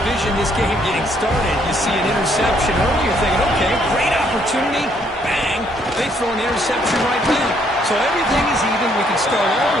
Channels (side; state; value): both; normal; correlation 0.68